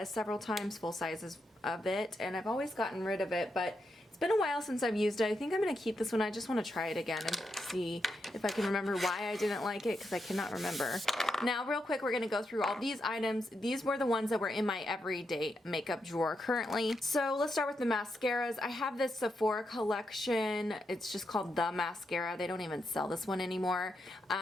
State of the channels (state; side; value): normal; both; correlation 0.83